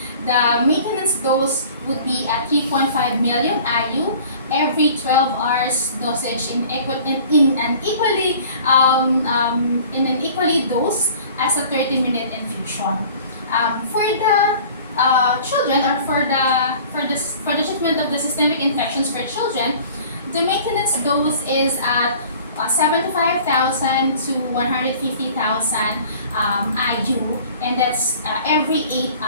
the maintenance dose would be at 3.5 million IU every 12 hours dosage in an equally dose as a 30-minute infusion. For the children, or for the treatment of the systemic infections for children, the maintenance dose is at 75,000 to 150,000 IU, and that's every 8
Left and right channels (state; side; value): inverted; both; correlation -0.47